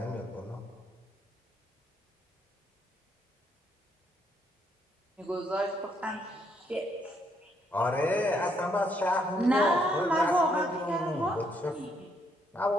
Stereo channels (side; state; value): both; normal; correlation 0.73